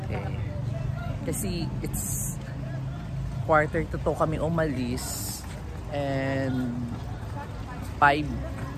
Kasi it's 1:45 kami umalis. And 5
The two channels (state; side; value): identical; both; correlation 1.00